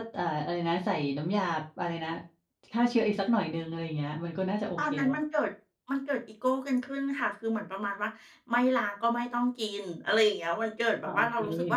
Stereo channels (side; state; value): both; identical; correlation 1.00